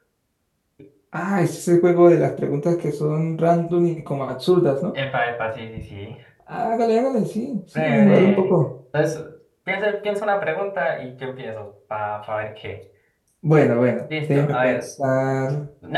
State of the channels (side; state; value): both; identical; correlation 1.00